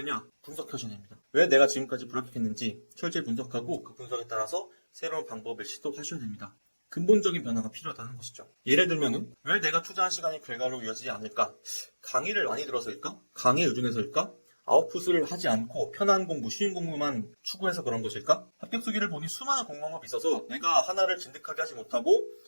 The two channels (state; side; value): inverted; both; correlation -1.00